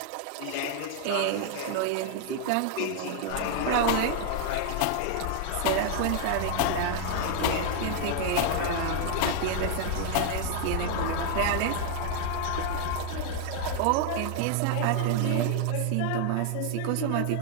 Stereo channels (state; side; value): different; both; correlation 0.00